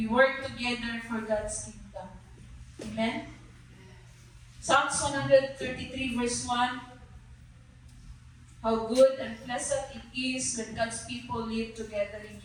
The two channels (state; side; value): identical; both; correlation 1.00